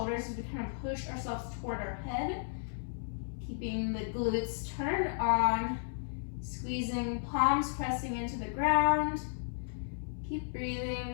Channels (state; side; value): silent; right; 55 dB below the other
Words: as we kind of push ourselves toward our head. Keeping the glutes turned on, squeezing, palms pressing into the ground. Keep